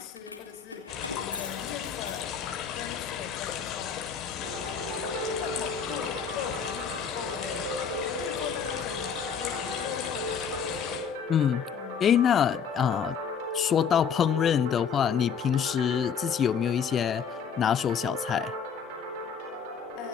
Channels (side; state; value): right; quieter; 6.9 dB